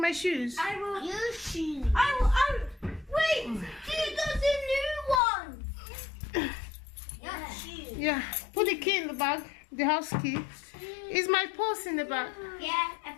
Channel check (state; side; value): drops out; right; at 5.2 s